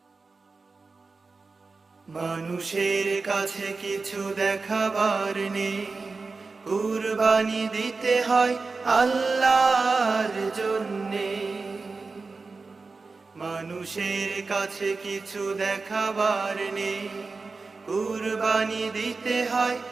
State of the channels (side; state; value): left; quieter; 4.1 dB